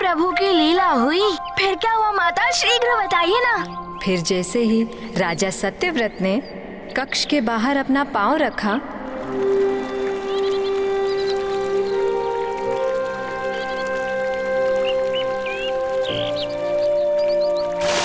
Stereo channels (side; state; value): both; identical; correlation 1.00